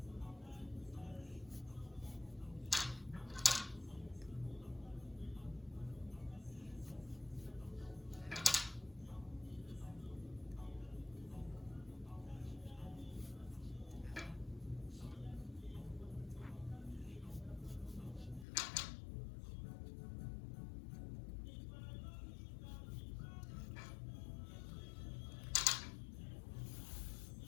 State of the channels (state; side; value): drops out; right; at 18.4 s